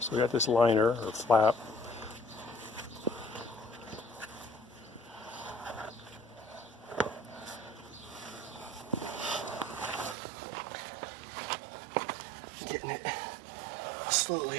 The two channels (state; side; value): drops out; left; at 10.2 s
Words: we got this liner or flap. Getting it